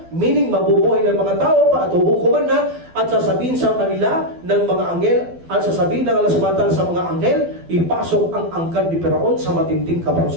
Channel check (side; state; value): left; late; 12 ms